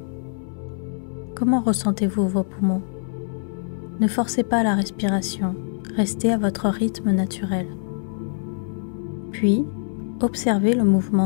Comment ressentez-vous vos poumons? Ne forcez pas la respiration, restez à votre rythme naturel. Puis, observez le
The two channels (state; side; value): silent; right; digital silence